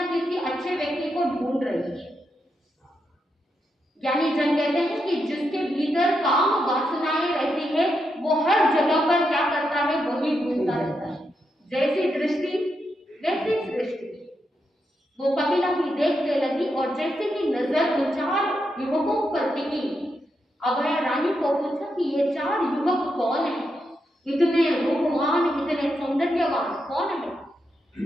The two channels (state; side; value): normal; both; correlation 0.83